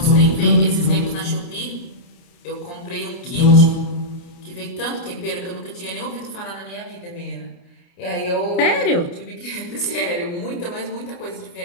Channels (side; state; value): right; late; 29 ms